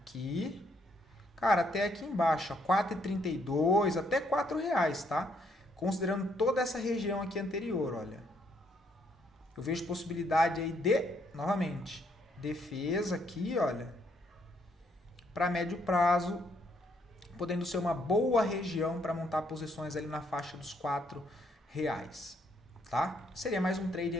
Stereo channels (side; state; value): both; normal; correlation 0.71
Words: cara, até aqui embaixo, 4,32, até R$4, tá? Considerando toda essa região aqui anterior, olha. Eu vejo possibilidade aí de, novamente, defesa aqui, olha, para médio prazo, podendo ser uma boa região para montar posições ali na faixa dos R$4, tá? Seria mais um trade